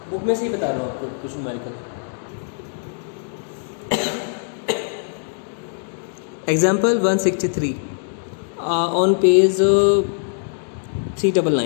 बुक में से ही बता रहा हूँ आपको कुछ न्यूमेरिकल। Example 163 on page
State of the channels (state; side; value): silent; right; 64 dB below the other